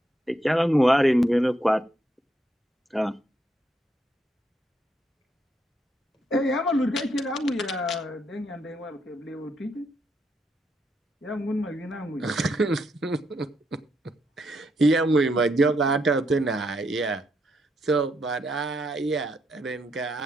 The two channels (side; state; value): both; normal; correlation 0.77